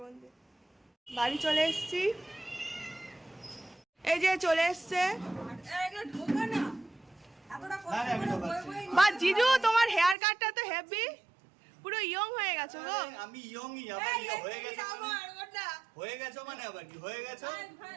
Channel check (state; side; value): drops out; left; at 10.2 s